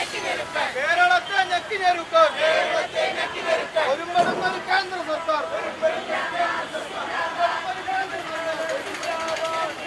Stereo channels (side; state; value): both; identical; correlation 1.00